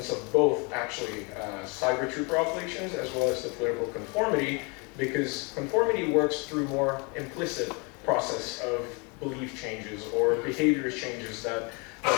of both actually cyber trooper operations as well as the political conformity, because conformity works through more implicit process of belief changes or behavior changes that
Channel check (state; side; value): quieter; right; 31.4 dB